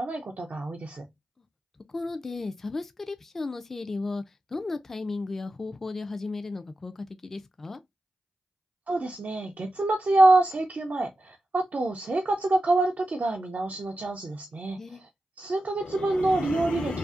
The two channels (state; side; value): normal; both; correlation 0.91